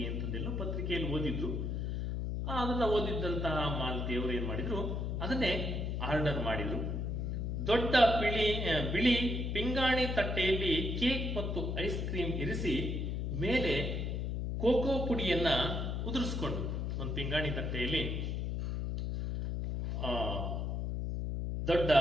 ಅಂತಂದೆಲ್ಲೋ ಪತ್ರಿಕೆಯಲ್ಲಿ ಓದಿದ್ರು. ಅದನ್ನ ಓದಿದ್ದಂತಹ ಮಾಲತಿಯವರು ಏನ್ ಮಾಡಿದ್ರು, ಅದನ್ನೇ ಆರ್ಡರ್ ಮಾಡಿದ್ರು. ದೊಡ್ಡ ಬಿಳಿ ಪಿಂಗಾಣಿ ತಟ್ಟೆಯಲ್ಲಿ ಕೇಕ್ ಮತ್ತು ಐಸ್ ಕ್ರೀಮ್ ಇರಿಸಿ ಮೇಲೆ ಕೋಕೋ ಪುಡಿಯನ್ನ ಉದುರಿಸ್ಕೊಂಡು, ಒಂದು ಪಿಂಗಾಣಿ ದೊಡ್ಡ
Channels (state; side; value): noise; left; hum, 1 dB below the sound